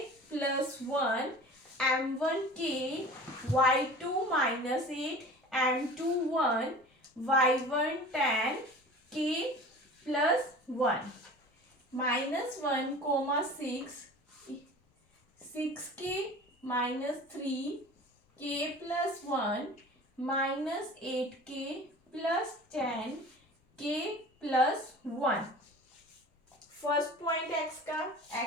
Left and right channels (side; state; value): both; normal; correlation 0.40